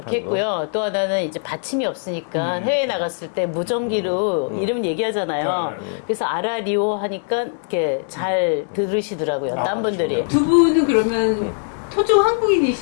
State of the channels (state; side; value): silent; right; digital silence